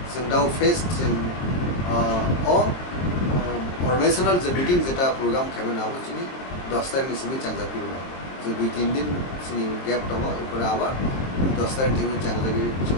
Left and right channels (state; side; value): late; right; 22 ms